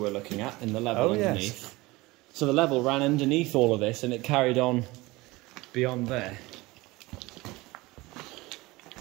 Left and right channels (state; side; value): quieter; left; 21.4 dB